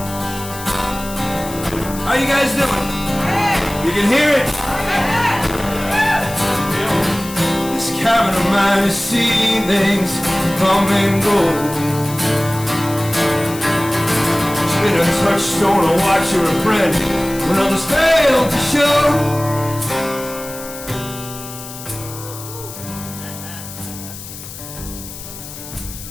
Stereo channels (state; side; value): noise; left; hiss, 13 dB below the sound